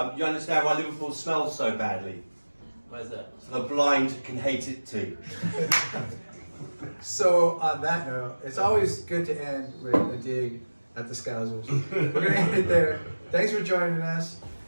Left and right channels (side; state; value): both; inverted; correlation -1.00